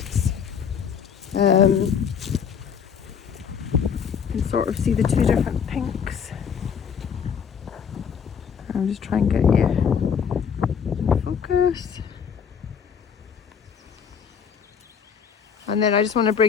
You can sort of see the two different pinks. I'm just trying to get you in focus. And then I just want to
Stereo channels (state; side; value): quieter; right; 7.1 dB